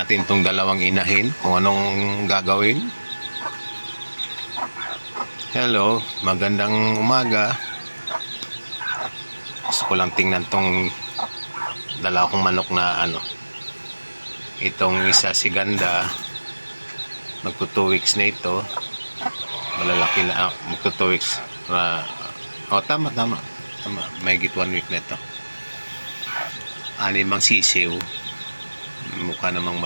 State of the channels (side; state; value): both; inverted; correlation -1.00